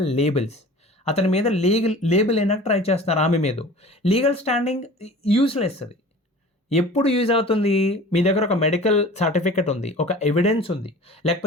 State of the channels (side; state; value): both; normal; correlation 0.42